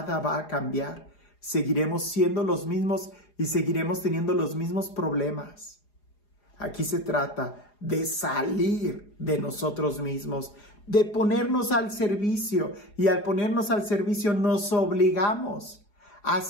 va a cambiar. Seguiremos siendo los mismos y seguiremos teniendo los mismos problemas. Aquí se trata de salir de nosotros mismos, de ponernos al servicio. Y al ponernos al servicio nos obligamos a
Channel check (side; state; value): right; late; 4.9 ms